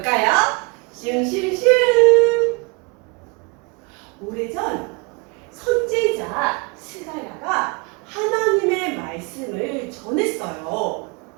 슝슝슝. 오래전 선지자 스가랴가 하나님의 말씀을 전했어요.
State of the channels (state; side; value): quieter; left; 30.3 dB